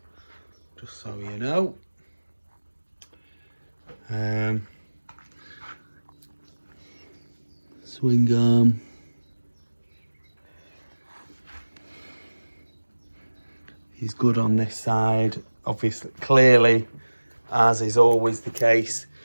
just so you know. Swing arm. He's good on this side. Obviously, clearly, as is always the case,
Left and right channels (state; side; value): inverted; both; correlation -1.00